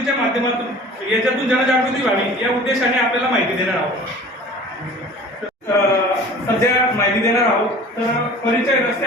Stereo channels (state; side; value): normal; both; correlation 0.44